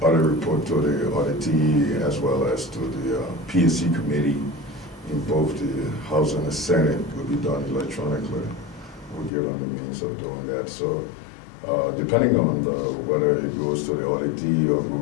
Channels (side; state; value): right; drops out; at 9.3 s